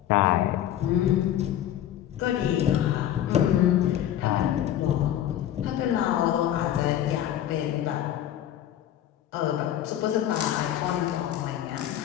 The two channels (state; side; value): quieter; right; 11.5 dB